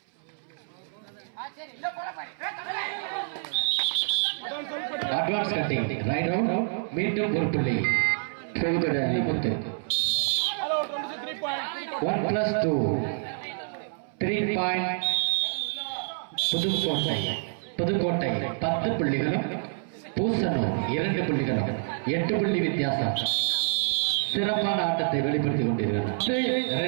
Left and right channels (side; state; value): left; silent; 60 dB below the other